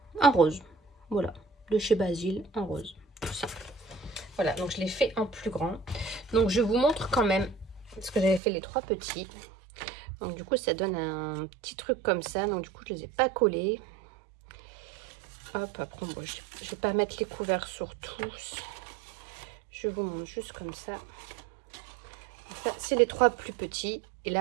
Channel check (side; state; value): left; drops out; at 8.4 s